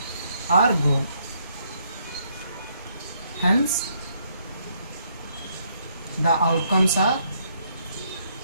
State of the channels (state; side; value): inverted; both; correlation -0.72